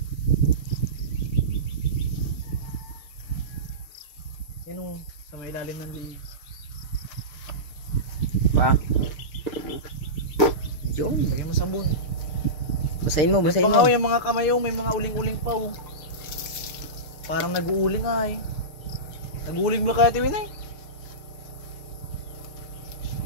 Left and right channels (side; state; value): right; late; 6.7 ms